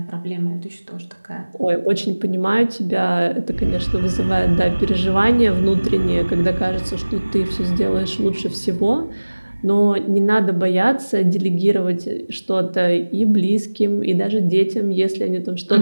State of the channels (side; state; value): both; inverted; correlation -1.00